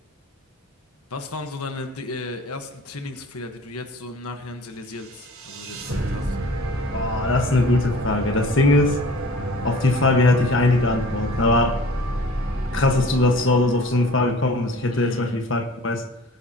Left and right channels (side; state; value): both; normal; correlation 0.46